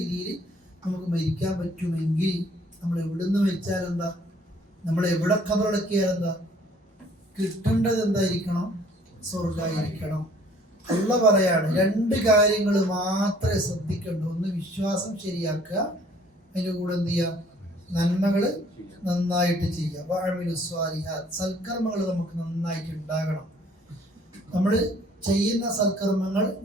നമുക്ക് മരിക്കാൻ പറ്റുമെങ്കിൽ നമ്മൾ എവിടുന്ന് വെച്ചാൽ എന്താ, നമ്മൾ എവിടെ ഖബറടക്കിയാൽ എന്താ, കിട്ടേണ്ടത് എന്തായിരിക്കണം? സ്വർഗ്ഗമായിരിക്കണം. അള്ള പറയാണ് രണ്ട് കാര്യങ്ങൾ മാത്രമേ ശ്രദ്ധിക്കണ്ടൂ. ഒന്ന് വിശ്വാസം ശരിയാക്കുക, അതിൻ്റെ കൂടെ എന്ത് ചെയ്യുക? നന്മകൾ നന്നായിട്ട് ചെയ്യുക. സൽക്കർമ്മങ്ങൾ നമുക്ക് നന്നായിട്ട് ഉണ്ടാകണം. നമ്മൾ ചെയ്യുന്ന സൽക്കർമ്മങ്ങൾ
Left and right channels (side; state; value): both; normal; correlation 0.58